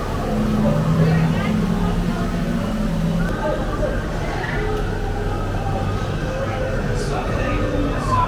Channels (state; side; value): identical; both; correlation 1.00